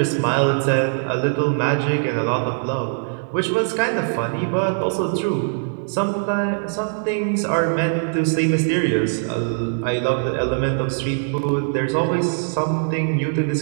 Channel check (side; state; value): left; silent; digital silence